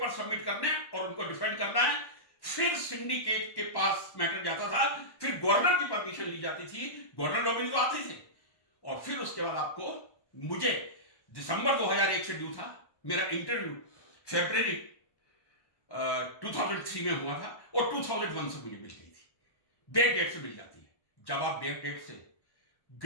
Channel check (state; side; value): late; right; 1.1 ms